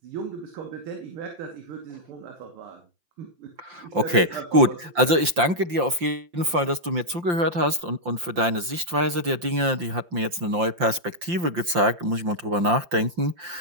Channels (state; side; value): late; left; 5.7 ms